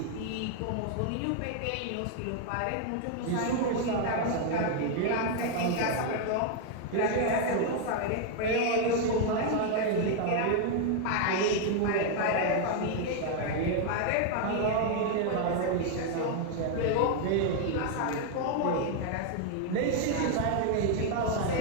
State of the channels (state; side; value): different; both; correlation 0.00